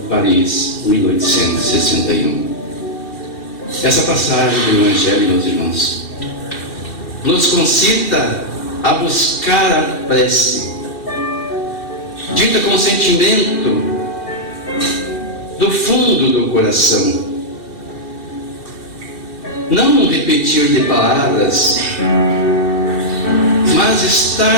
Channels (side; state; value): right; late; 2.6 ms